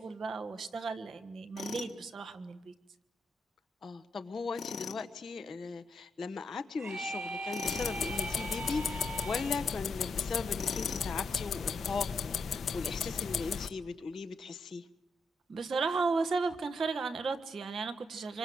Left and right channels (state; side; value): normal; both; correlation 0.80